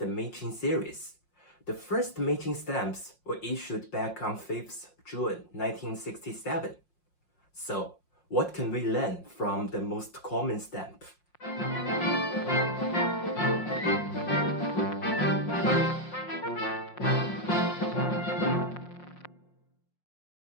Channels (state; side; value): late; right; 5.6 ms